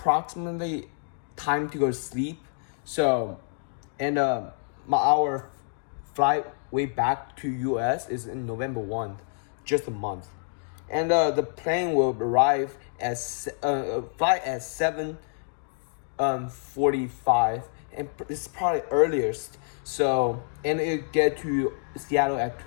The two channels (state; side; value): silent; right; digital silence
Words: time to go to sleep. So, and our flight way back to US is in November 1, just a month. And the plane will arrive at flight at 7:45, and it's probably earliest. So, and it get to Seattle at